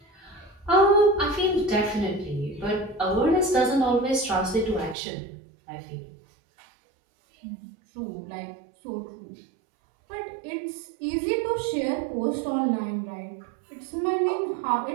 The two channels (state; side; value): drops out; left; at 5.0 s